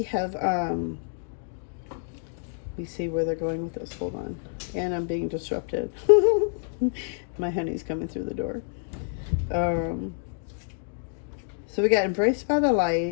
have, let me see where they're going with this. Hold on. And I'm being disrupted. My honey's coming through the door. So we got embraced by the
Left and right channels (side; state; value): right; silent; digital silence